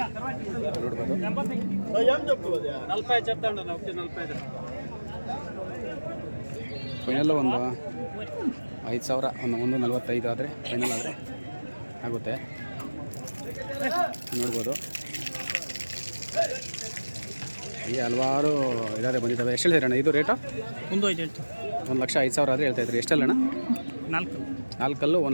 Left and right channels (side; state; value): both; inverted; correlation -1.00